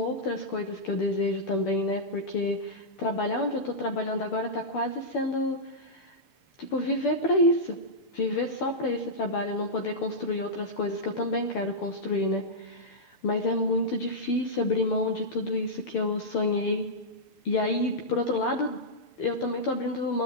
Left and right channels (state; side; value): late; right; 6.8 ms